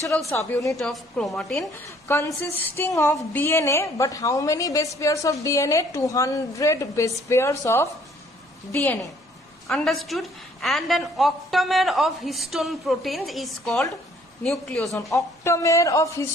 subunit of chromatin consisting of DNA, but how many base pairs of DNA? 200 base pairs of DNA. Understood? And an octamer of histone proteins is called nucleosome. Octamer of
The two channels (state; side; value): normal; both; correlation 0.60